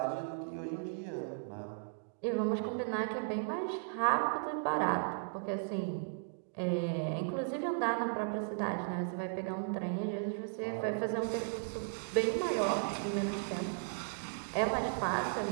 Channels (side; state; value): left; silent; digital silence